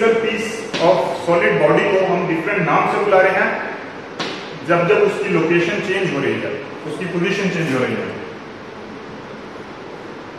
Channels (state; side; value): identical; both; correlation 1.00